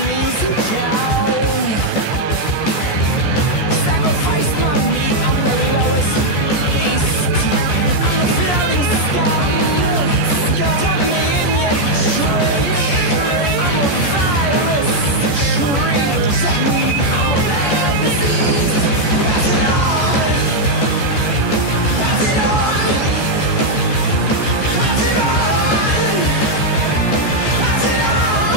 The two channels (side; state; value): right; late; 14 ms